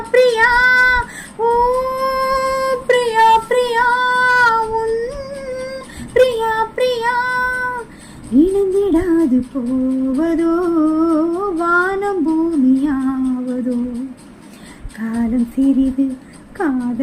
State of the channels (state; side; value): identical; both; correlation 1.00